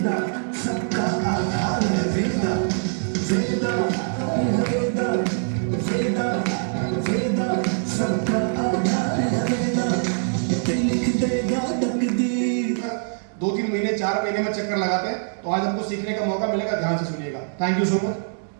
सबका आधार है वेदा वेदा वेदा वेदा वेदा सबका आधार है वेदा लिख देगा तकदीर। 2-3 महीने 4 महीने में चक्कर लगाते हैं, तो आज हमको सीखने का मौका मिलेगा। ध्यान से सुनिएगा। Thank you so much.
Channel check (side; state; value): left; silent; digital silence